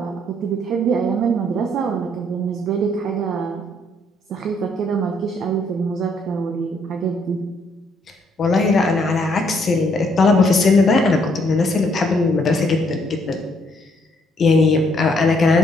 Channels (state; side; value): normal; both; correlation 0.69